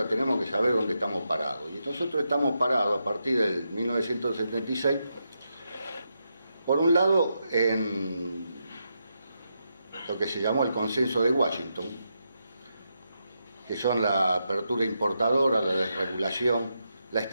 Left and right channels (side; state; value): both; inverted; correlation -0.84